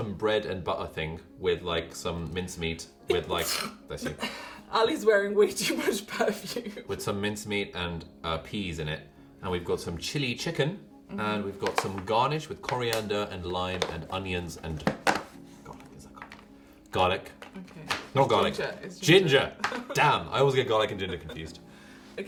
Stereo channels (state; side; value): identical; both; correlation 1.00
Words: bread and butter thing with like some mincemeat with like... Bless you. Ali's wearing way too much perfume. With some mincemeat and peas in it. And we've got some chili chicken. Mm-hmm. And we've got some garnish with coriander and lime and onions and... Garlic, is that garlic? Garlic. Okay. Not garlic. Ginger. It's Ginger. Damn, I always get garlic and ginger confused.